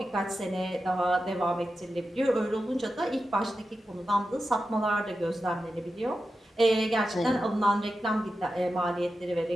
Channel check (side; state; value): both; normal; correlation 0.91